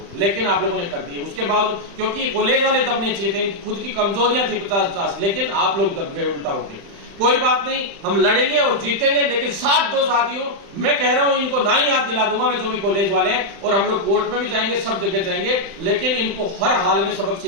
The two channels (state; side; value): late; left; 35 ms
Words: लेकिन आप लोगों ने कर दिए। उसके बाद क्योंकि कॉलेज वाले दबने चाहिए थे, खुद की कमजोरियां थी 50-50, लेकिन आप लोग दब गए उल्टा होके। कोई बात नहीं, हम लड़ेंगे और जीतेंगे, लेकिन साथ दो साथियों। मैं कह रहा हूं इनको ना ही याद दिला दूंगा मैं, जो भी कॉलेज वाले हैं, और हम लोग कोर्ट में भी जाएंगे, सब जगह जाएंगे, लेकिन इनको हर हाल में सबक